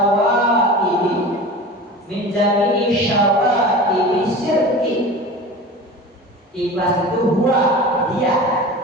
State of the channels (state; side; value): normal; both; correlation 0.34